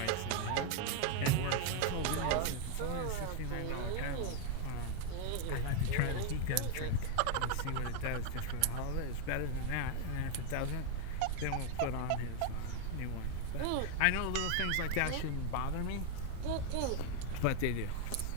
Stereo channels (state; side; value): different; both; correlation 0.01